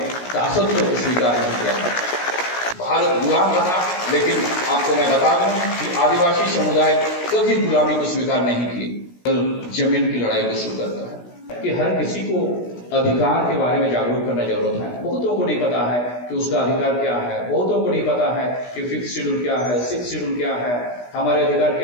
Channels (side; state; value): right; late; 16 ms